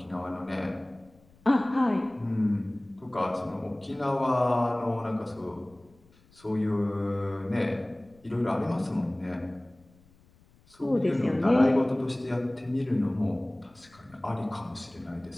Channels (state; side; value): noise; left; rumble, 29 dB below the sound